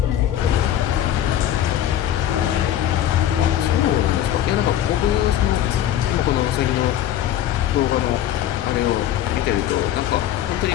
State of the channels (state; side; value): quieter; right; 11.5 dB